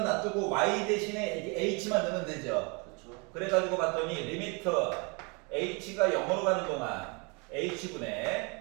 놔두고 y 대신에 이제 h만 넣으면 되죠. 그렇죠. 그래가지고 봤더니 리미트 h가 0으로 가는 동안 h분의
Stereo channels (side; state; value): left; quieter; 31.7 dB